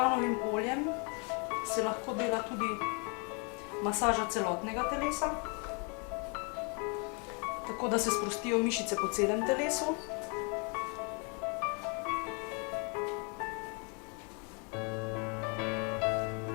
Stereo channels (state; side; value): quieter; right; 35.0 dB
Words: oljem se lahko dela tudi masaža celotnega telesa, tako da se sprostijo mišice po celem telesu.